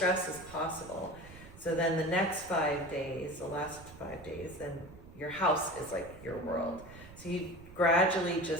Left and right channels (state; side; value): noise; right; rumble, 18 dB below the sound